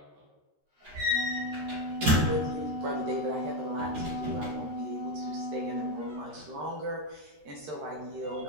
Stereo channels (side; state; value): left; late; 13 ms